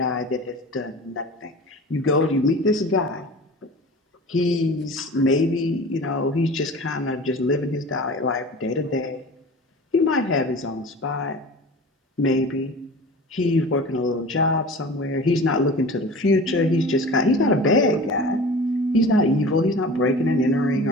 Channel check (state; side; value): normal; both; correlation 0.38